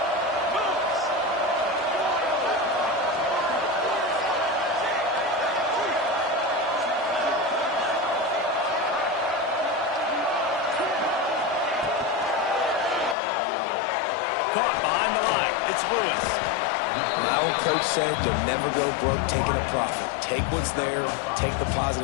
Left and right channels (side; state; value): right; drops out; at 13.2 s